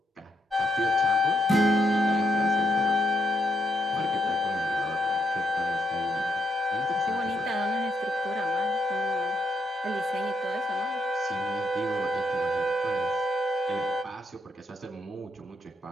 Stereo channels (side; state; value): both; normal; correlation 0.77